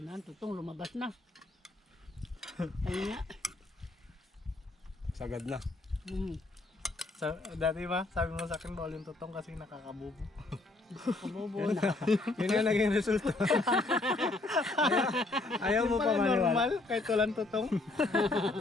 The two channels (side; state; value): right; quieter; 3.1 dB